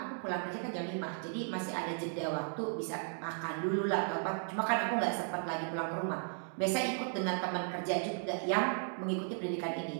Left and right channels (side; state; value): left; silent; 54 dB below the other